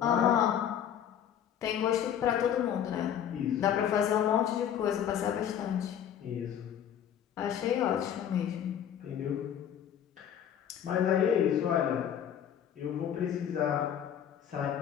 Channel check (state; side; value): quieter; right; 9.4 dB